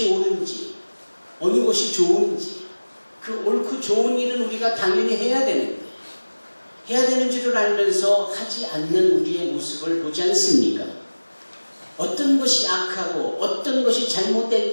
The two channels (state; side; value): inverted; both; correlation -1.00